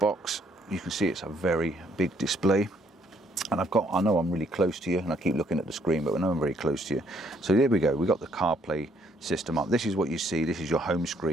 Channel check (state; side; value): normal; both; correlation 0.68